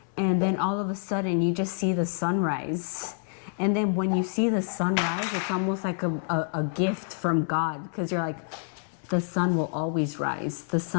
And then all of a sudden you just see the sunrise. And then when you see the sunrise, it's almost like a gift from God, because you're like, the sun will always rise. The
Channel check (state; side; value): silent; right; 60 dB below the other